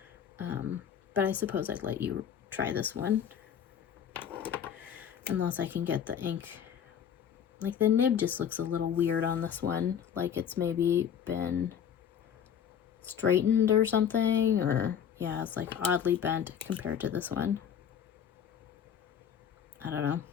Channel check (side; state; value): right; quieter; 8.6 dB